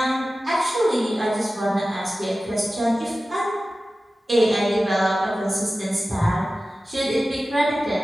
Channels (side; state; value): both; normal; correlation 0.95